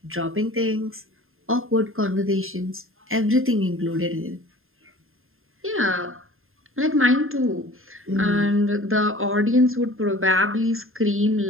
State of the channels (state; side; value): late; left; 0.61 ms